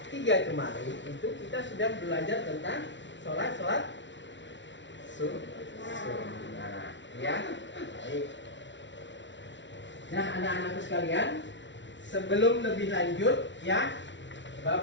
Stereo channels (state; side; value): late; right; 0.53 ms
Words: 3 kemarin itu kita sudah belajar tentang sholat sunnah. Ya. Baik. Nah, anak-anakku sekalian, sebelum lebih lanjut ya,